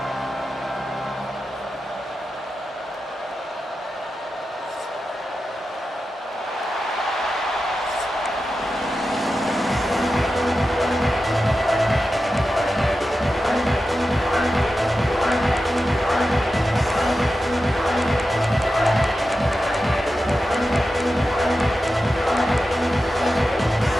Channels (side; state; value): both; normal; correlation 0.91